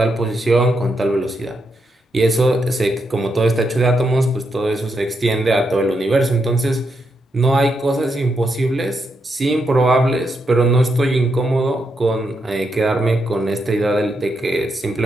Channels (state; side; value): normal; both; correlation 0.82